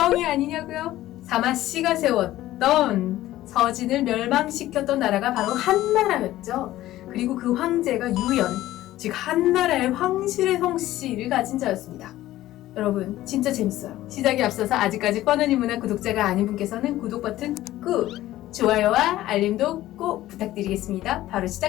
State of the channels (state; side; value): quieter; right; 15.0 dB